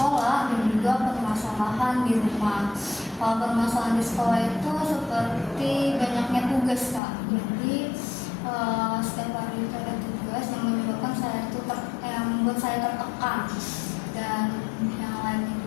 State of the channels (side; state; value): right; drops out; at 7.0 s